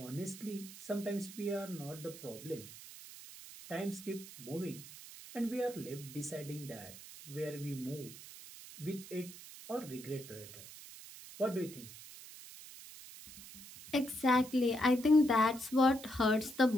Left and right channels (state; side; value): noise; right; hiss, 15 dB below the sound